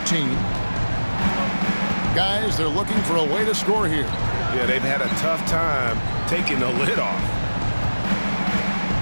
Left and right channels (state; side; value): inverted; both; correlation -1.00